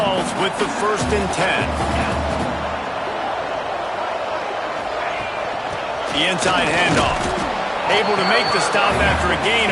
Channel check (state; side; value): identical; both; correlation 1.00